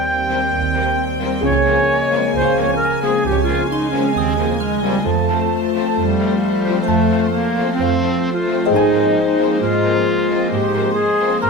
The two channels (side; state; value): both; normal; correlation 0.41